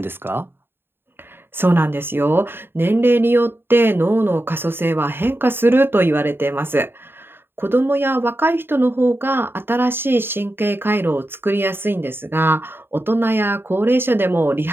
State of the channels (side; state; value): left; late; 0.11 ms